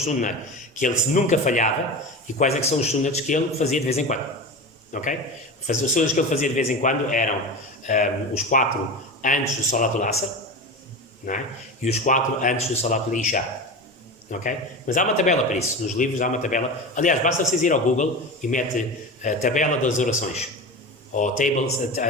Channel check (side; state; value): both; normal; correlation 0.27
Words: sunnats que ele nunca falhava e quais é que são os sunnats que ele fazia de vez em quando. Ok? Os sunnats que ele fazia de vez em quando eram os 4 antes do Salatul Asr, não é? E os 4 antes do Salatul Isha. Ok? Mas há uma tabela para isso. Nos livros há uma tabela. Aliás, basta vocês ir ao Google e mete a tabela das orações. Ou